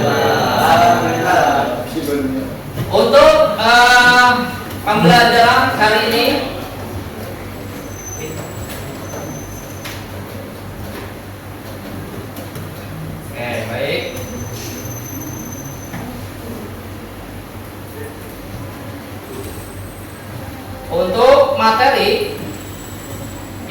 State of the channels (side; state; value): both; identical; correlation 1.00